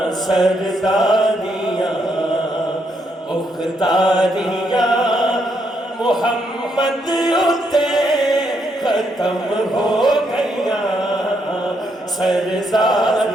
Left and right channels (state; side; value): normal; both; correlation 0.76